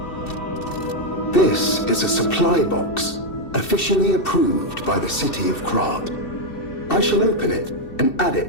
This is a supply box, officially approved by the city of Krat. I shall open it and add it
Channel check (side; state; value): right; late; 2.7 ms